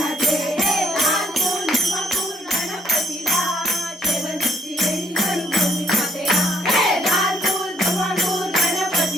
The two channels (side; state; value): both; normal; correlation 0.66